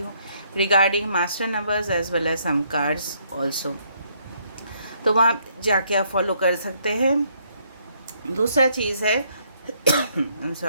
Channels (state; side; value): inverted; both; correlation -0.69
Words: regarding master numbers as well as some cards also, तो वहाँ जाके आप फॉलो कर सकते हैं। दूसरा चीज़ है आई एम